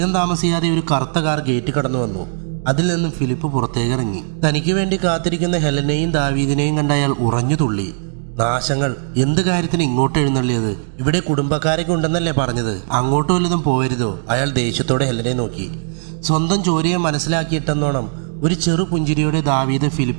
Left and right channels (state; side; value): silent; left; digital silence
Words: താമസിയാതെ ഒരു കറുത്ത കാർ ഗേറ്റ് കടന്നു വന്നു. അതിൽ നിന്നും ഫിലിപ്പ് പുറത്തേക്കിറങ്ങി. തനിക്ക് വേണ്ടി കാത്തിരിക്കുന്ന ഹെലനെയും ദാവീദിനെയും കണ്ട അയാൾ ഉറഞ്ഞു തുള്ളി. നാശങ്ങൾ! എന്ത് കാര്യത്തിന് ഇങ്ങോട്ട് എഴുന്നള്ളിയത്? ഇവിടെ കുടുംബക്കാരൊക്കെ ഉണ്ടെന്നല്ലേ പറഞ്ഞത്? അങ്ങോട്ട് വല്ലതും പോയരുതോ? അയാൾ ദേഷ്യത്തോടെ ഹെലനെ നോക്കി. സ്വന്തം ചോരയെ മനസ്സിലാക്കിയിട്ടെന്നോണം ഒരു ചെറു പുഞ്ചിരിയോടെ ദാവീദ്